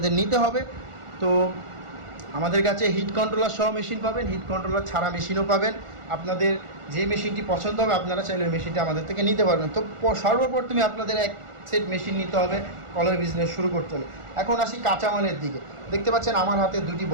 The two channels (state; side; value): late; left; 1.4 ms